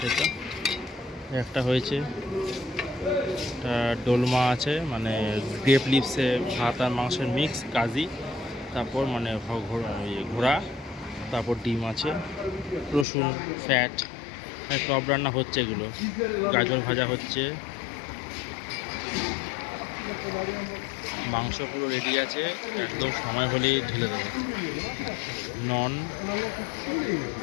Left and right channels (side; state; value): right; drops out; at 13.1 s